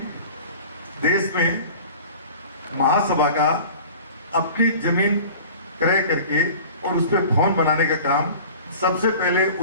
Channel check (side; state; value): both; inverted; correlation -0.41